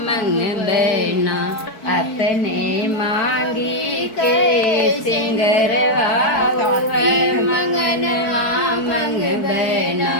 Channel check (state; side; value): late; right; 4.6 ms